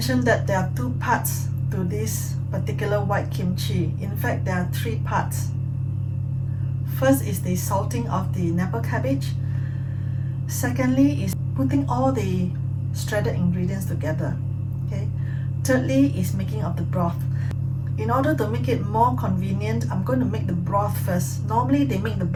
that there are 2 parts to this particular white kimchi. In fact, there are 3 parts. First is the salting of the Napa cabbage. Secondly is putting all the shredded ingredients together. Okay. Thirdly is making of the broth. In order to make it more convenient, I'm going to make the broth first. Normally they make the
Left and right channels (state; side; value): identical; both; correlation 1.00